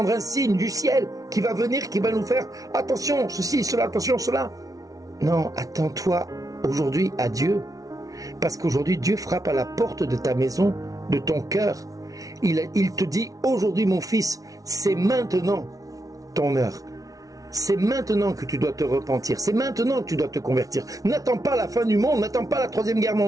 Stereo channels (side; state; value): left; late; 0.18 ms